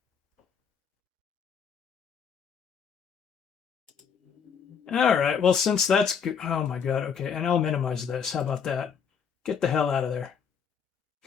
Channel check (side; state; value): right; quieter; 6.8 dB